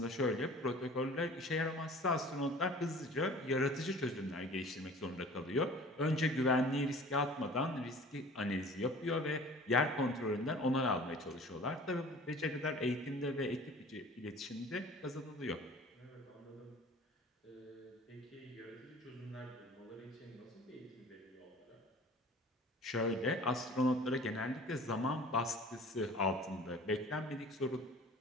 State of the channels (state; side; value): normal; both; correlation 0.46